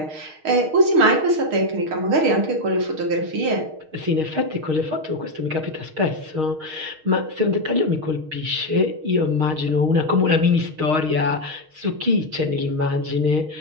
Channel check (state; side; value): late; left; 6.4 ms